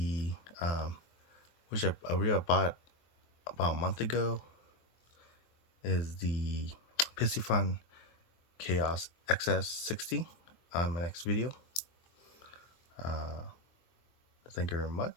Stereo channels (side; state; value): right; late; 23 ms